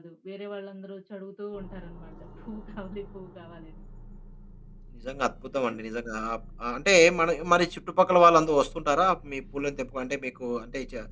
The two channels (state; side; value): identical; both; correlation 1.00